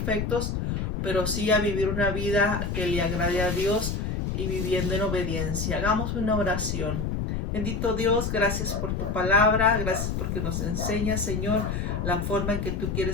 pero sí a vivir una vida que le agrade a Dios y viviendo en obediencia. Hagamos una oración. Bendito Dios, gracias por tu palabra, gracias porque nos enseñas, Señor, la forma en que tú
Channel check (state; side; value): noise; left; rumble, 2 dB below the sound